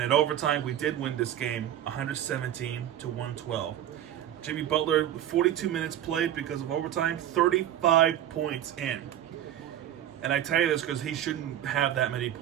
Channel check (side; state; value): left; quieter; 11.3 dB